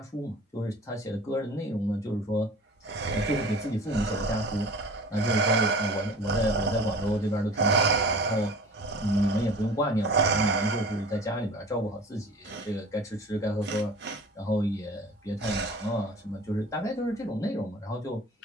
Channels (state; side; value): normal; both; correlation 0.42